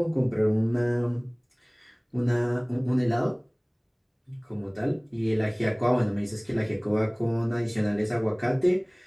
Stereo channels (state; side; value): identical; both; correlation 1.00